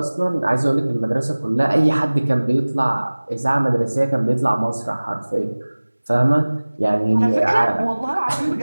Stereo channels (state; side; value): inverted; both; correlation -1.00